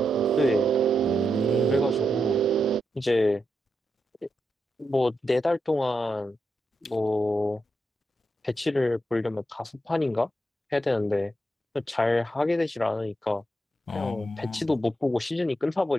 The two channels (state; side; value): normal; both; correlation 0.85